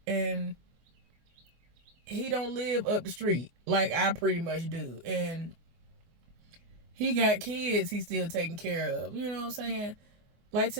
and he don't live up the street like I pretty much do, and he got kids he's still taking care of. You know what I'm saying? Like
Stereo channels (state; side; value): late; left; 24 ms